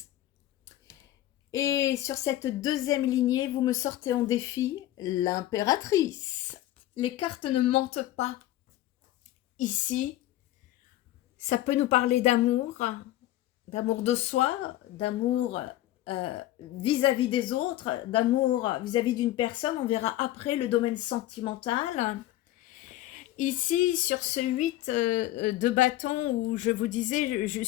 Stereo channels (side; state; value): right; quieter; 14.7 dB